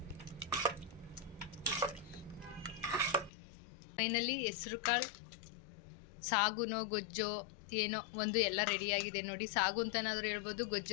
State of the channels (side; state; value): right; drops out; at 3.3 s